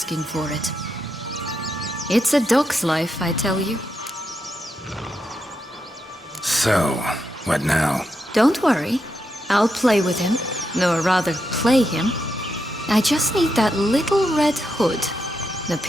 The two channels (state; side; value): normal; both; correlation 0.83